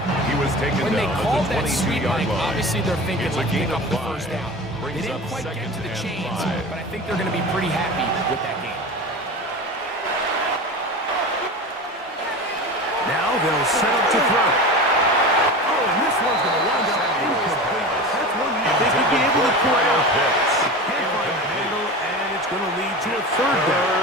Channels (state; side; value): normal; both; correlation 0.30